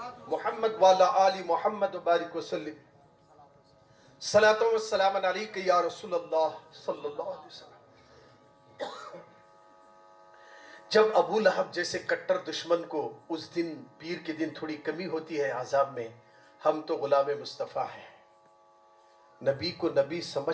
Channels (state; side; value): identical; both; correlation 1.00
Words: मुहम्मद वाला आली मुहम्मद बारिक वसल्लिम। सलातो व सलाम अलैका या रसूल अल्लाह सल्लल्लाहु अलैहि वसल्लम। जब अबू लहब जैसे कट्टर दुश्मन को उस दिन पीर के दिन थोड़ी कमी होती है आजाब में, हम तो गुलाम मुस्तफ़ा हैं, नबी को नबी